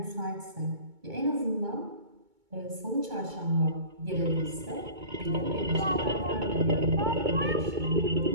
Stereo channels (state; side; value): late; left; 2.2 ms